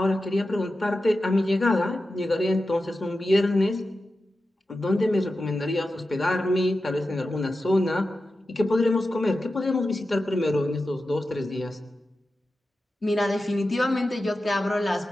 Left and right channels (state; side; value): normal; both; correlation 0.92